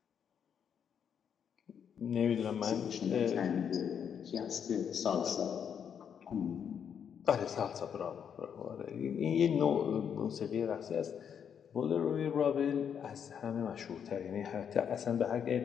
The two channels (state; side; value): quieter; right; 7.9 dB